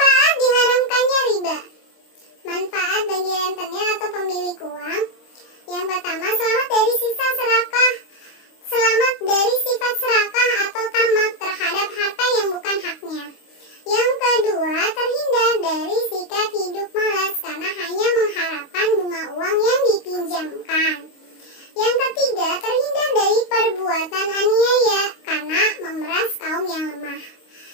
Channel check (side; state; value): right; late; 25 ms